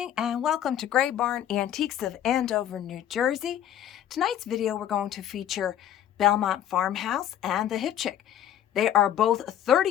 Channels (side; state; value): right; quieter; 10.8 dB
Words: and welcome to Gray Barn Antiques of Andover, New Jersey. Tonight's video we're going to feature Belmont Farmhouse and the Hip Chick. They are both